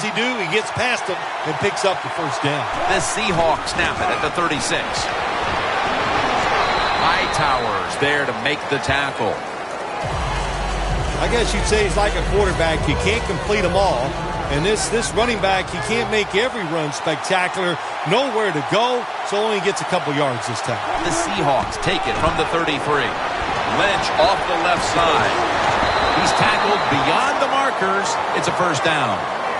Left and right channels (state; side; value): identical; both; correlation 1.00